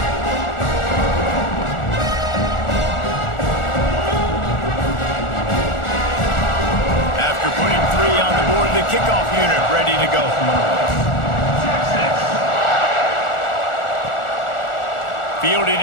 The kickoff unit ready to go. Fielded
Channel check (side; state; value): right; late; 1.4 ms